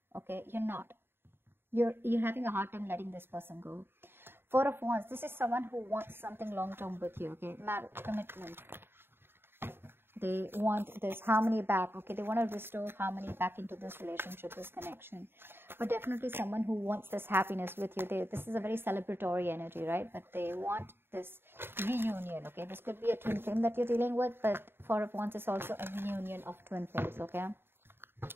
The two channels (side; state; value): left; late; 0.11 ms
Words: okay? You're not. You're having a hard time letting this person go. Four of Wands. This is someone who wants something long-term with you, okay? Marriage, commitment. They want this harmony back, okay? They want to restore harmony back into this relationship, this connection. But definitely someone who wants this happiness with you. This is a very celebratory energy, right? But they want this reunion, okay? This could be a twin flame that you're dealing with, but Four of Wands is also a reunion of twin flames, okay?